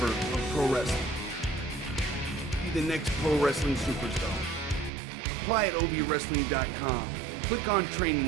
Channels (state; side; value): drops out; left; at 4.9 s